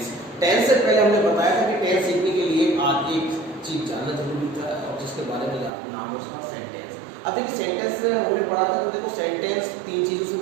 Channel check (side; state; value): left; drops out; at 5.7 s